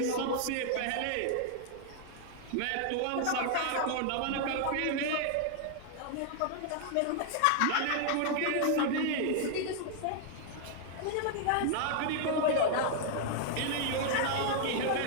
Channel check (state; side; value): different; both; correlation 0.00